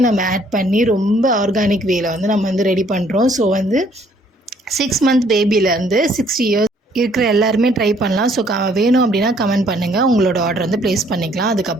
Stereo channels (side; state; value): both; normal; correlation 0.63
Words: நம்ம ஆட் பண்ணி ரொம்ப ஆர்கானிக் வேல வந்து நம்ம வந்து ரெடி பண்ணுறோம். ஸோ வந்து 6 மந்த் பேபிலேருந்து 60 இயர்ஸ் இருக்கிற எல்லாருமே ட்ரை பண்ணலாம். ஸோ வேணும் அப்படின்னா கமெண்ட் பண்ணுங்கள். உங்களோட ஆர்டர் வந்து ப்ளேஸ் பண்ணிக்கலாம்.